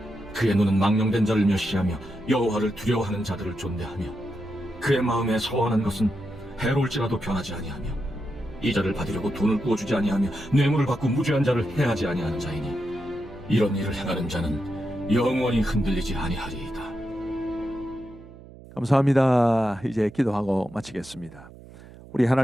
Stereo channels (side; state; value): right; noise; hum, 19 dB below the sound